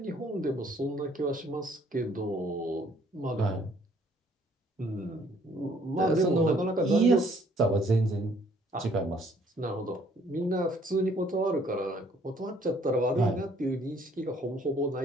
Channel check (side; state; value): both; normal; correlation 0.62